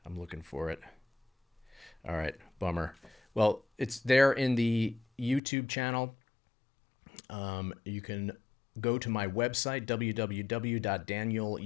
I'm looking for it. All right, bummer. Well, it's there in the YouTube channel. You can go to my website,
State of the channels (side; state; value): right; drops out; at 5.4 s